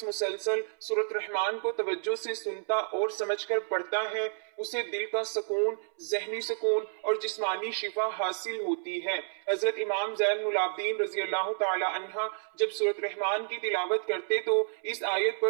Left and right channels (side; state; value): left; silent; 58 dB below the other